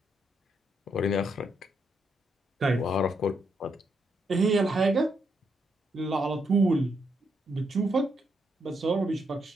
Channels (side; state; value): both; normal; correlation 0.78